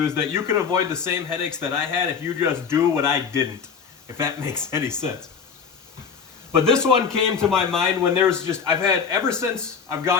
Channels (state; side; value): quieter; right; 6.3 dB